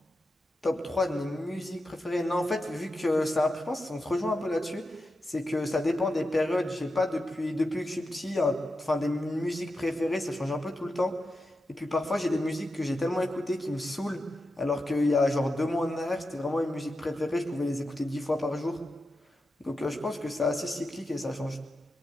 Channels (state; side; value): normal; both; correlation 0.89